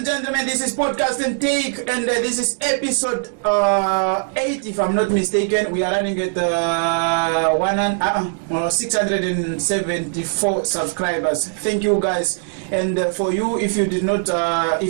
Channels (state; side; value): silent; left; 66 dB below the other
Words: gentlemen, this is Podcast and Take, and this is episode 8, if I'm not mistaken. We are running at 674 subscribers. Thank you, guys. And for you, if you did not,